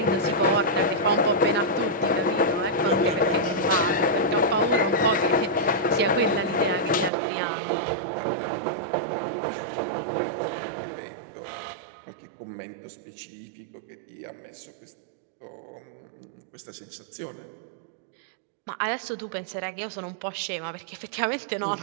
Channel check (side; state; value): left; drops out; at 7.1 s